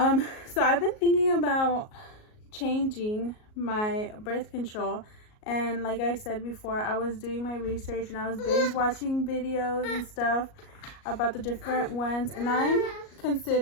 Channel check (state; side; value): late; right; 38 ms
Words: I've been thinking about changing my birth control, and like I said before, I was doing my research and I was binge watching videos and stuff about the different ones, and I'm